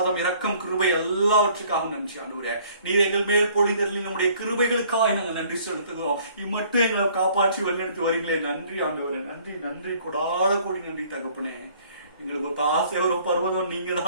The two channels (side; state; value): both; inverted; correlation -0.57